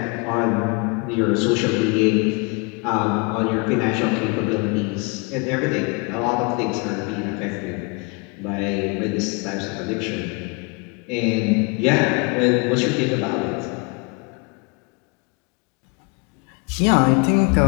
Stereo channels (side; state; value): right; quieter; 29.7 dB